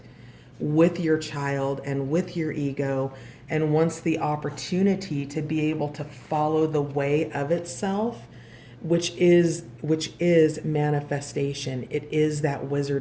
with your child and with your ego and wants the opportunity to be able to follow the way of itself, which is manifestation. It is that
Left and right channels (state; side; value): identical; both; correlation 1.00